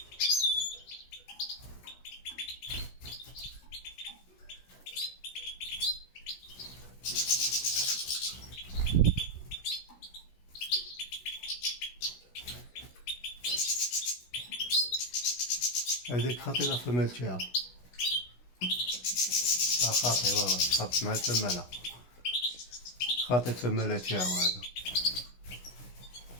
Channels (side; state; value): right; late; 16 ms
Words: هذيك خطيرة الفمال تاعو، خاطي والله تخاف مع الفمالة، خاطي الفمالة تاعو هذا.